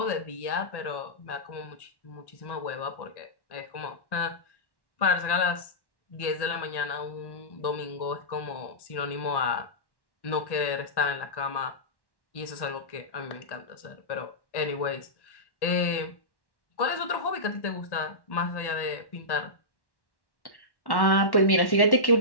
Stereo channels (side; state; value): right; late; 1.1 ms